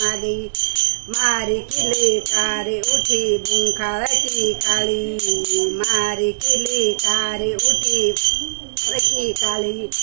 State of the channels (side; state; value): left; silent; digital silence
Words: मारी किली कारी उठी बुंखावटी काली, मारी किली कारी उठी बुंखावटी काली।